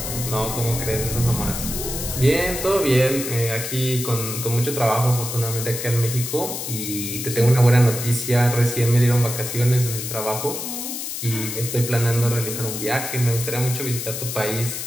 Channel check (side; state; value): left; noise; hiss, 5 dB below the sound